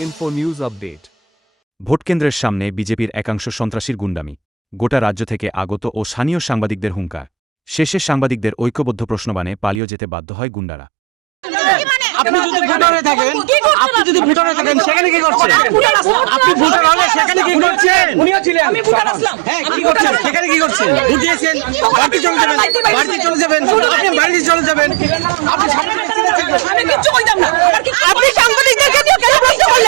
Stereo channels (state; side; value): drops out; left; at 9.8 s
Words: Info News Update. ভোটকেন্দ্রের সামনে বিজেপির একাংশ সন্ত্রাসীর গুন্ডামি, গোটা রাজ্য থেকে আগত ও স্থানীয় সাংবাদিকদের হুঙ্কার। শেষে সাংবাদিকদের ঐক্যবদ্ধ প্রশ্নবাণে পালিয়ে যেতে বাধ্য হয় গুন্ডারা। আপনি যদি ভোটারে থাকেন সেখানে কি করছেন? আপনি ভোটার হলে সেখানে কি করছেন? উনিও ছিলেন, হ্যাঁ, কি করছেন? সেখানে কি করছেন? ভোট দিয়েছেন, বাড়িতে চলে যাবেন, আপনি বাড়িতে চলে যাবেন। আমি কিচ্ছু বলতাম না। আপনি সাংবাদিকদেরকে নিয়ে কেন প্রশ্ন